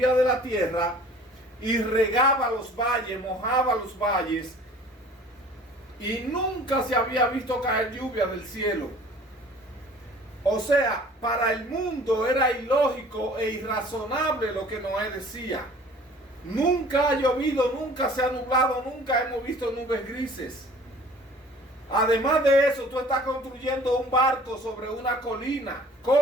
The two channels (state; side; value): normal; both; correlation 0.49